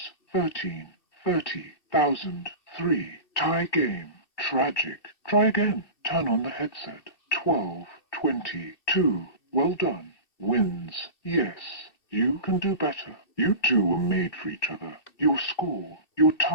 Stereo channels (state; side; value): late; right; 2.6 ms